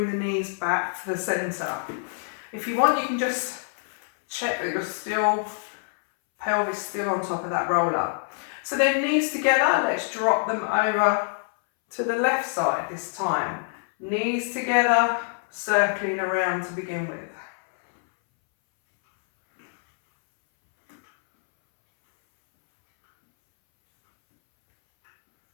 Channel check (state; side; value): silent; right; 61 dB below the other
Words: the knees back to the centre. If you want, you can just check that your pelvis still on top of that roller. So then knees together, let's drop them over to the left side this time. Knees together, circling around to begin with.